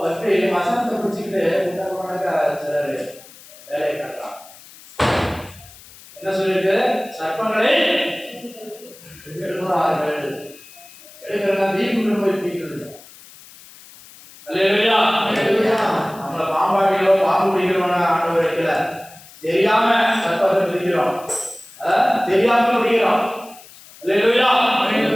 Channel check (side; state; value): left; noise; hiss, 21 dB below the sound